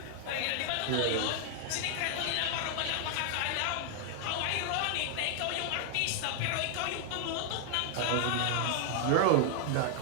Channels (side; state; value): both; different; correlation 0.00